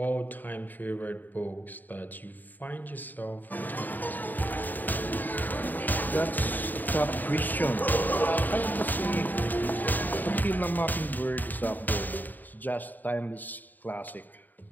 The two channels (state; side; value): late; right; 0.087 ms